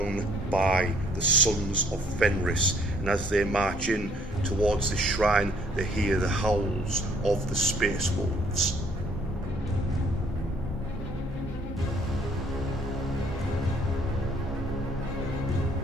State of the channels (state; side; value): normal; both; correlation 0.63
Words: by the Sons of Fenris, and as they march in towards the shrine, they hear the howls of the Space Wolves.